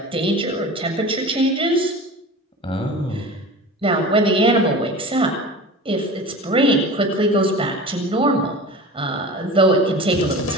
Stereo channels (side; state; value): both; normal; correlation 0.35